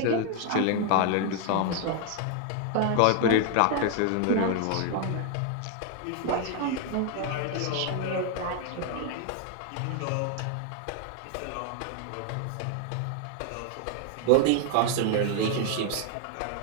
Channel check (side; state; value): both; different; correlation 0.00